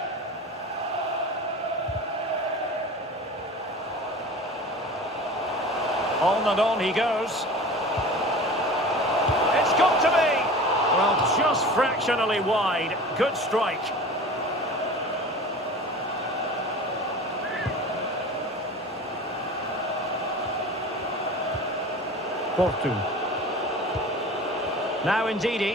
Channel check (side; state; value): both; normal; correlation 0.37